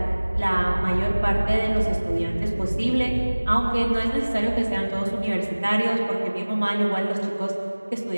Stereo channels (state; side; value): inverted; both; correlation -1.00